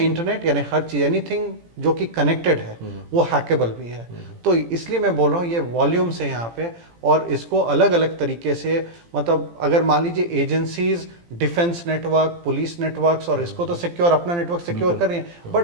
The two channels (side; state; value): left; late; 17 ms